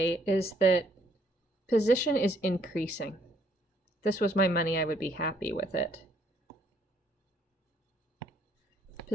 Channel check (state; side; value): normal; both; correlation 0.67